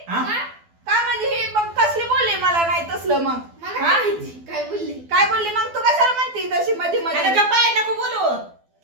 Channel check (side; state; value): left; late; 12 ms